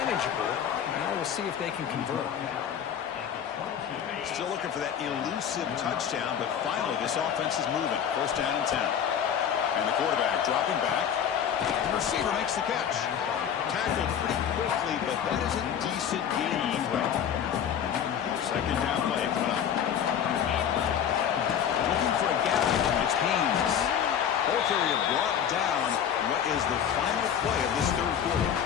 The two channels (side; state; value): right; quieter; 8.7 dB